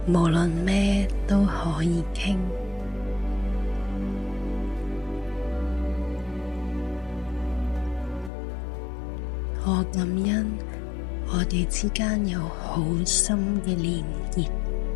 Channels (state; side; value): drops out; right; at 8.3 s